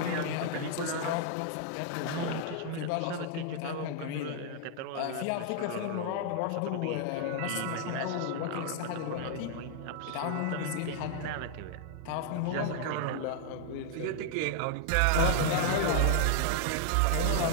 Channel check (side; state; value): both; different; correlation -0.01